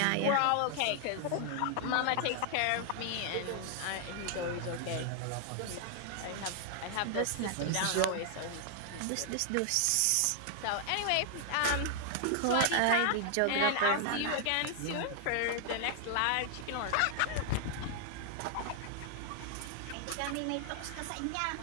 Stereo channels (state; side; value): different; both; correlation 0.00